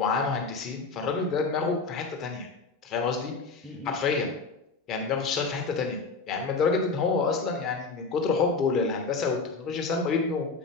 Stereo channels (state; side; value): quieter; right; 4.2 dB